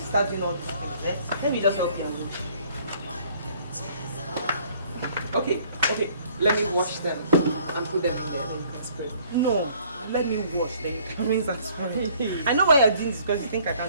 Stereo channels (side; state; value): both; inverted; correlation -0.59